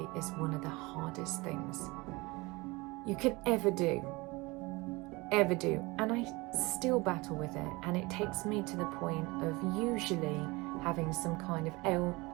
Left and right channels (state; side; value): quieter; left; 23.8 dB